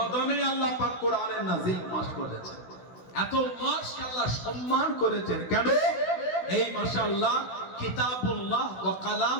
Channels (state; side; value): late; right; 16 ms